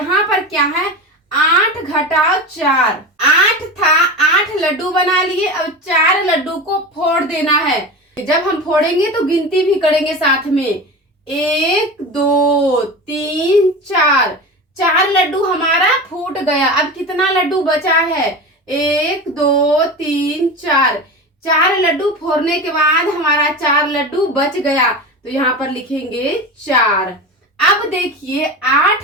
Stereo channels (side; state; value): both; normal; correlation 0.27